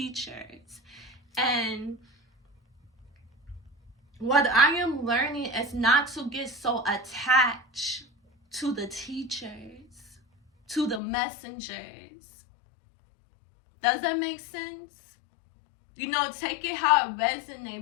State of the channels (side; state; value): right; drops out; at 11.0 s